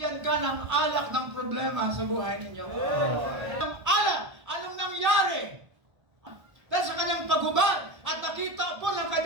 ka ng alak ng problema sa buhay ninyo. Ang alak, anong nangyari? Dahil sa kanyang paghubad at nakita po ng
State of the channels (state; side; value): late; left; 1.2 ms